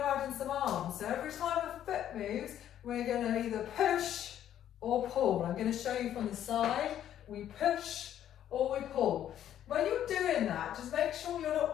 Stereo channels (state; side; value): quieter; right; 10.9 dB